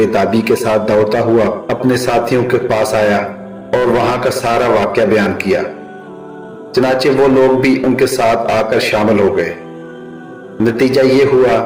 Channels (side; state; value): both; identical; correlation 1.00